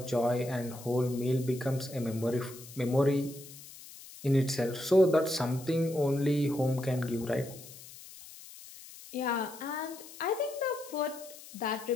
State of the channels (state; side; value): noise; left; hiss, 17 dB below the sound